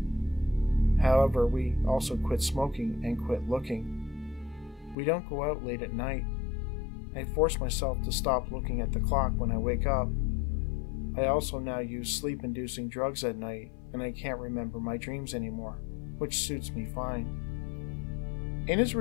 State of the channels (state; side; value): drops out; right; at 5.0 s